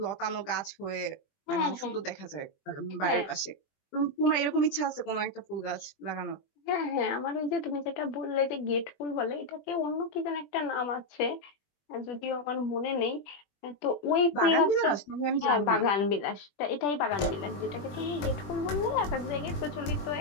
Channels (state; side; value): late; right; 20 ms